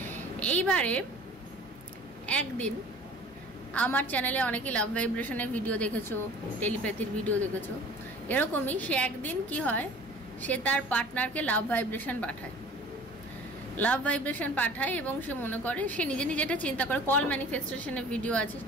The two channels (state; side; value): normal; both; correlation 0.45